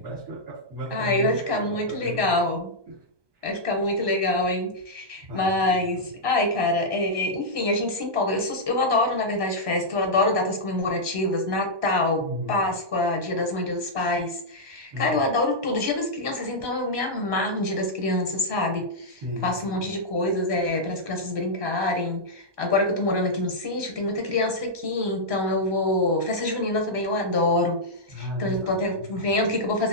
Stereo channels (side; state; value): left; late; 1.2 ms